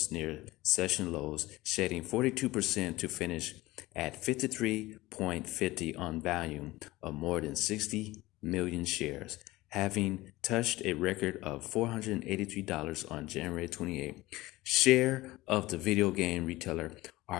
near session lows, shedding 42% to finish at 53.50 on volume of more than 60 million shares, having touched a record of $483 on January 28. Share of the video game retailer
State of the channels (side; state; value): right; quieter; 18.9 dB